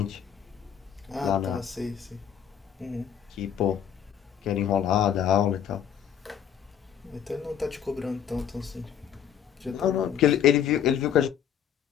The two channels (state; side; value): quieter; right; 9.0 dB